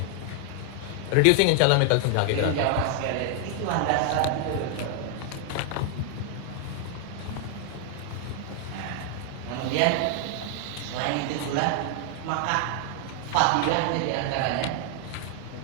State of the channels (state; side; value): different; both; correlation 0.00